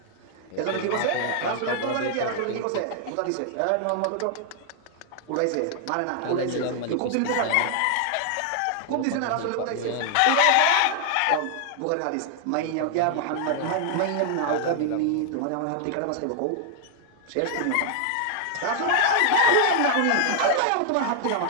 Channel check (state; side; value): different; both; correlation 0.00